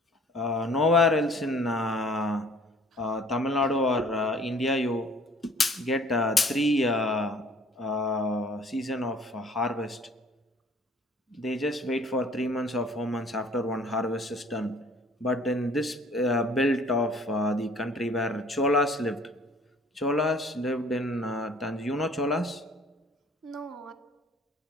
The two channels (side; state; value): both; normal; correlation 0.54